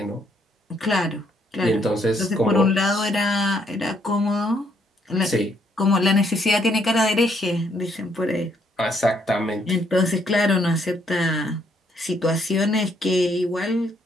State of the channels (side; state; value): both; normal; correlation 0.71